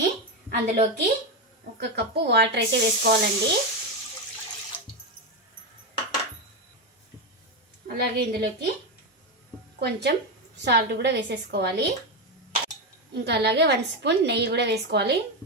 అందులోకి 1 కప్పు వాటర్ అయితే వేసుకోవాలండి. అలాగే ఇందులోకి కొంచెం సాల్ట్ కూడా వేసేసుకోవాలి. ఇంకా అలాగే 1 స్పూన్ నెయ్యి కూడా వేసుకోవాలి.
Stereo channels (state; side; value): normal; both; correlation 0.10